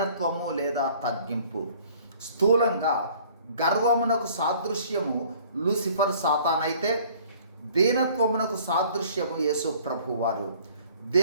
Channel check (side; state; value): both; inverted; correlation -0.54